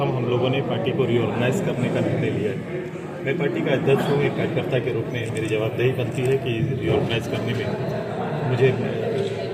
हम लोगों ने पार्टी को रीऑर्गेनाइज करने का निर्णय लिया है। मैं पार्टी का अध्यक्ष हूँ, एक कार्यकर्ता के रूप में मेरी जवाबदेही बनती है कि रीऑर्गेनाइज करने में मुझे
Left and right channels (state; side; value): identical; both; correlation 1.00